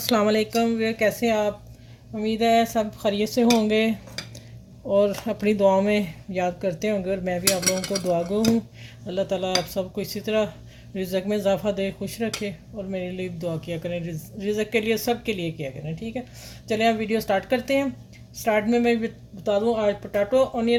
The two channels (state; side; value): identical; both; correlation 1.00